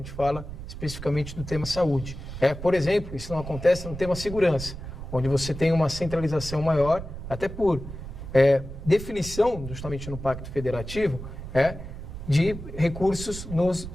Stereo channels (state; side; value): noise; right; rumble, 10 dB below the sound